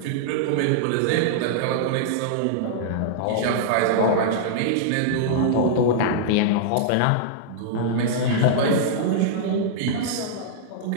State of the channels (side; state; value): both; different; correlation -0.02